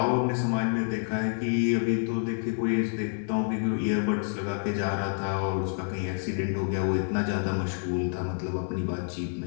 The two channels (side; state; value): right; silent; 59 dB below the other